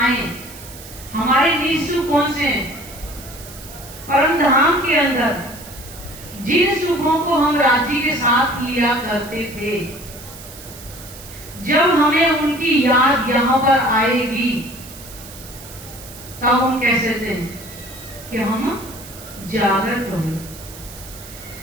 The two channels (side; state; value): right; noise; hiss, 16 dB below the sound